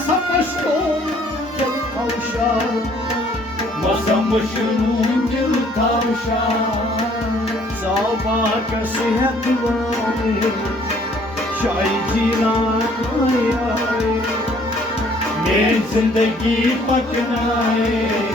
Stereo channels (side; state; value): both; normal; correlation 0.60